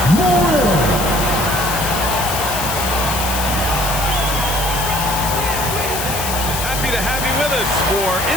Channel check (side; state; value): left; noise; hiss, 5 dB below the sound